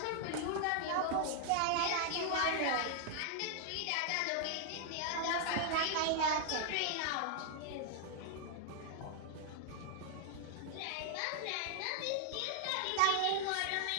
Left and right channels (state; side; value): different; both; correlation 0.00